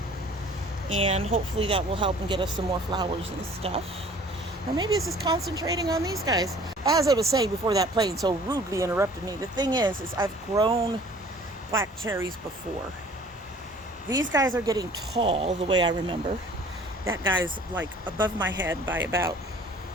and hopefully that will help and get us some more flowers and stuff. Or maybe it's just concentrating on these guys. As I was saying before that plane so rudely interrupted me, the thing is I've grown black cherries before. These guys are getting tall the way I remember. That guy's like above my head by about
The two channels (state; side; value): normal; both; correlation 0.51